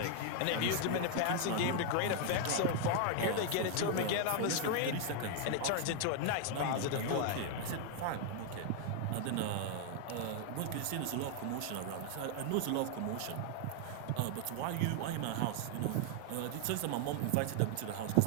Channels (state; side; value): different; both; correlation 0.00